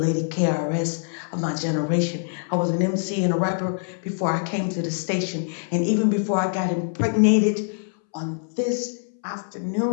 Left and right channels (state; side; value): silent; right; 62 dB below the other